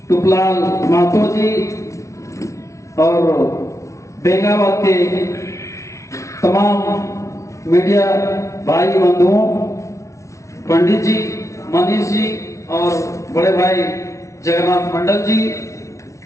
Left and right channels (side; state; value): right; late; 0.14 ms